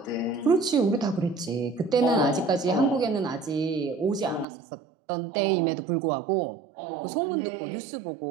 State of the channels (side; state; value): left; drops out; at 4.5 s